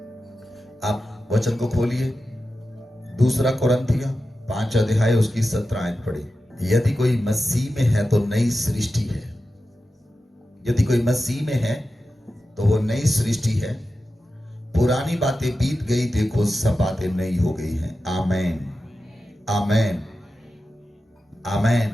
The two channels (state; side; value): normal; both; correlation 0.92